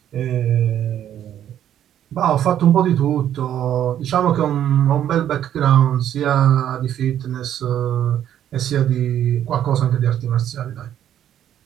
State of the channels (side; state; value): left; quieter; 10.6 dB